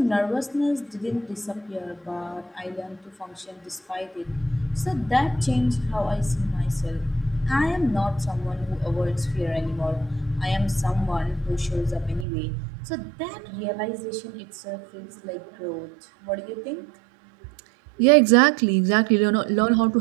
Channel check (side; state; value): left; drops out; at 12.2 s